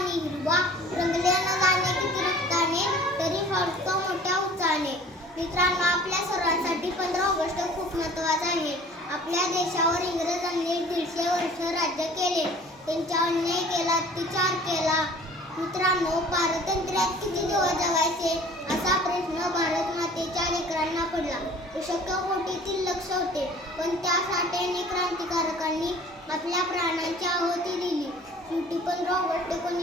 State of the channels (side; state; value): both; normal; correlation 0.48